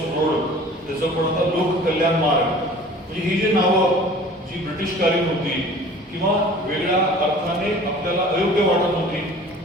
रोड त्याचं पण आता लोक कल्याण मार्ग. म्हणजे ही जी नावं जी ब्रिटिशकालीन होती किंवा वेगळ्या अर्थाने आपल्याला अयोग्य वाटत होती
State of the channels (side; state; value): both; normal; correlation 0.45